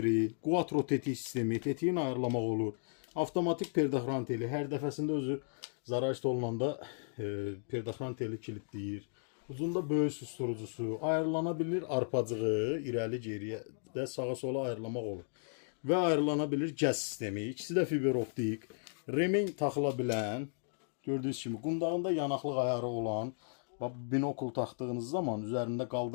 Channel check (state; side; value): silent; right; digital silence